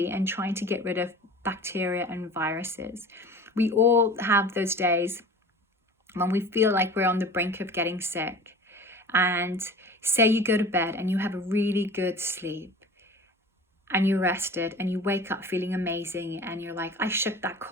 and trying to get rid of bacteria and viruses. We all have those days when we feel like we're on the brink of getting sick, and say you go to bed and you have a really good sleep and you're rested and you wake up feeling amazing and you're like, I shook that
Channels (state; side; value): normal; both; correlation 0.39